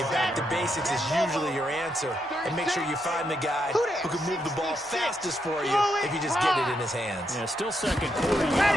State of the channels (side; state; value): both; normal; correlation 0.80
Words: back to basics is usually your answer, and make sure you find the guy who can move the ball fastest for you if you just get it in his hands. Yeah, still second quarter.